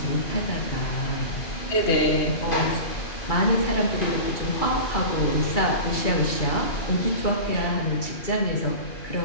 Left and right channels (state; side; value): late; right; 2.3 ms